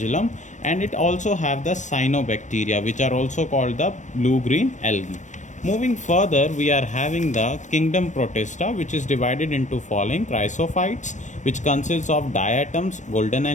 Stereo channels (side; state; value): right; late; 0.35 ms